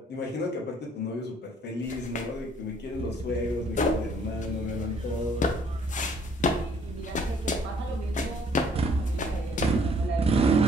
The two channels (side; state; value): both; normal; correlation 0.61